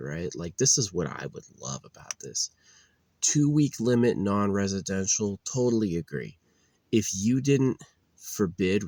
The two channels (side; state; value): both; identical; correlation 1.00